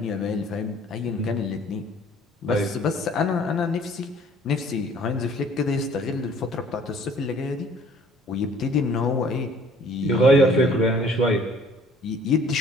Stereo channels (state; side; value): normal; both; correlation 0.55